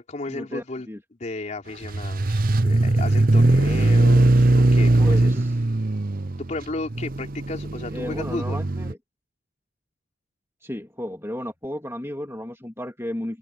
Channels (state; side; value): normal; both; correlation 0.89